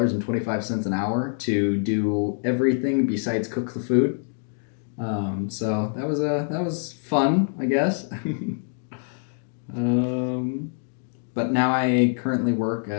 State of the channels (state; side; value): silent; right; digital silence